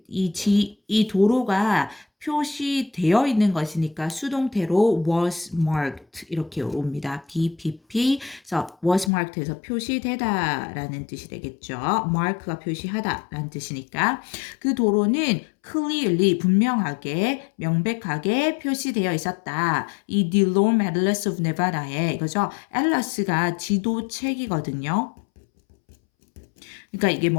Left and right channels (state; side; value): drops out; right; at 9.1 s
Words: 이 도로가 표시되어 있는 것이니까 수동태로 was marked 이렇게 옵니다. BPP 그래서 was marked에서 표시되다라는 뜻이 되겠죠. mark가 표시하다라는 뜻이니까 그 도로는 clearly 분명하게 명백하게 표시되어 있었다. 이 DeLorme Atlas of Nevada에 이거죠. 앨러스가 지도책이거든요. 그러니까 이게